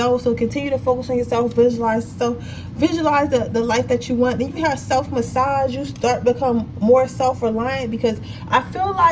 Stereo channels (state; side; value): identical; both; correlation 1.00